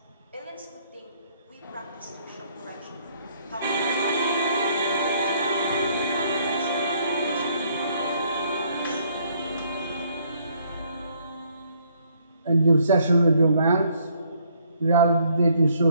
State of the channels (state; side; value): inverted; both; correlation -0.66